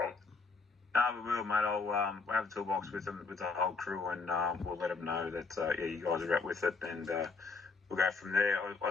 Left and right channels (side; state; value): right; quieter; 4.3 dB